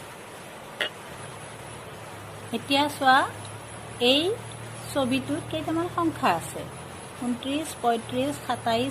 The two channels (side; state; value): both; identical; correlation 1.00